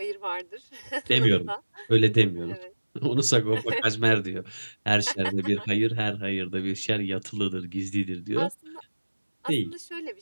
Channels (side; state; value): both; inverted; correlation -1.00